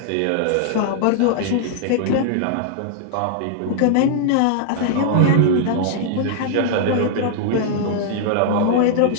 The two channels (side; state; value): both; different; correlation -0.01